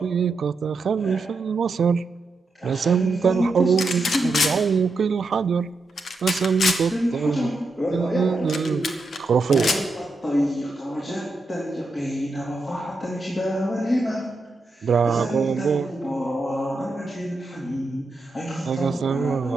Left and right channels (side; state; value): left; quieter; 3.1 dB